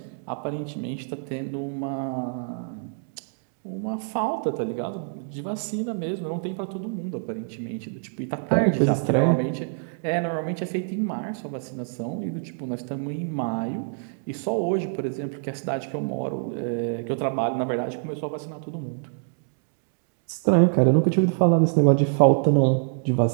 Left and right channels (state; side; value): silent; left; digital silence